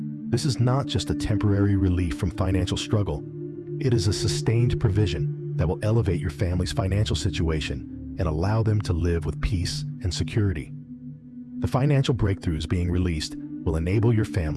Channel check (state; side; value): identical; both; correlation 1.00